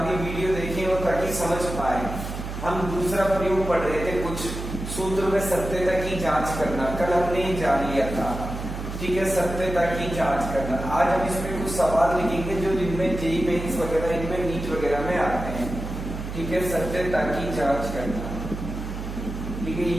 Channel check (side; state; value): right; noise; hum, 7 dB below the sound